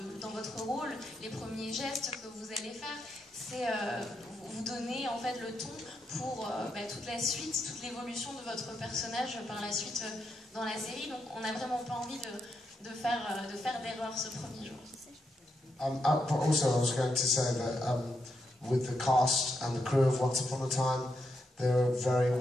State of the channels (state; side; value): normal; both; correlation 0.82